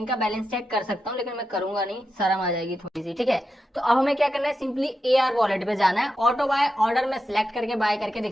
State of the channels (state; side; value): normal; both; correlation 0.88